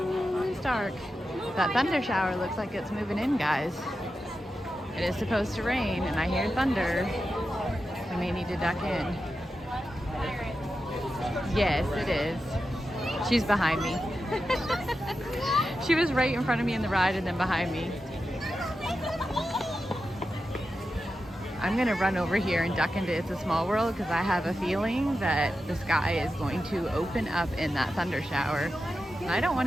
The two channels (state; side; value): normal; both; correlation 0.90